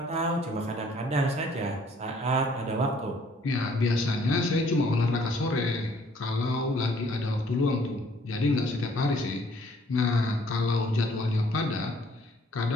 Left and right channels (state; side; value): normal; both; correlation 0.60